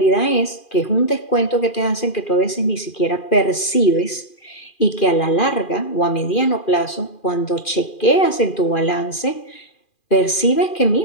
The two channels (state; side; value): late; right; 2.4 ms